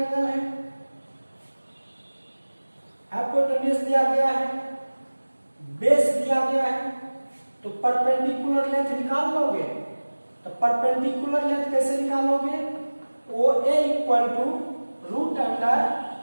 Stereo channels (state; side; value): inverted; both; correlation -1.00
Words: है, हाइपोटेन्यूज दिया गया है, बेस दिया गया है, तो परपेंडिकुलर लेंथ निकाल लोगे। तो परपेंडिकुलर लेंथ कैसे निकालोगे? O A equal to root under